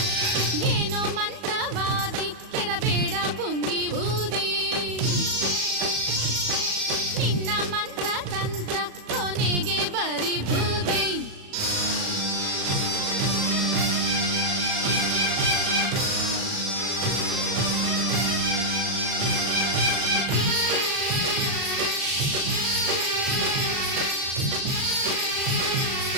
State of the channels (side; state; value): left; late; 37 ms